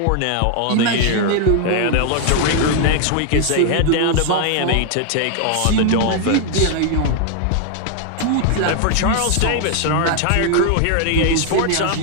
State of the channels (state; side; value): different; both; correlation 0.00